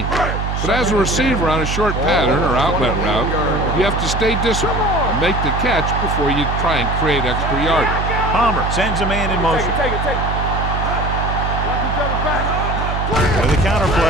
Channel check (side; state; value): right; noise; hum, 2 dB below the sound